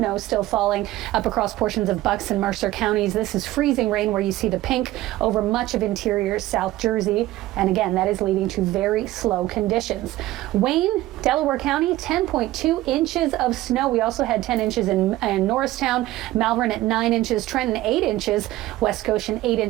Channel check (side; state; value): left; quieter; 16.4 dB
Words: still falling up across portions of Bucks and Mercer counties. This is freezing rain where you see the pink over much of interior South Jersey. And again, that is leading to very slow conditions. Wayne, Delaware County, 10.2 inches of snow. We also had 10 inches in Norristown, Malvern at 9 inches, Trenton 8 inches, West Goshen 8